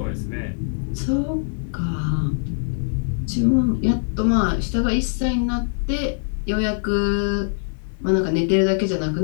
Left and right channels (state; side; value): silent; right; digital silence